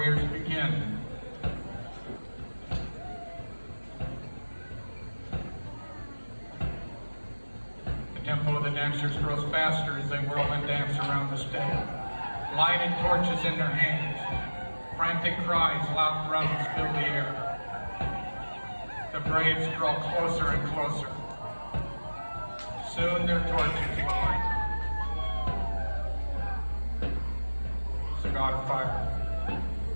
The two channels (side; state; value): both; inverted; correlation -1.00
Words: begin. The tempo of the dancers grows faster as they whirl and dance around the stage. Lighted torches in their hands. Frantic cries, loud drums fill the air. The braves draw closer and closer. Soon their torches light. It's the god of fire.